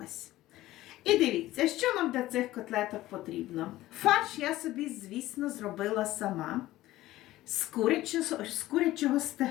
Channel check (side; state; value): right; quieter; 16.1 dB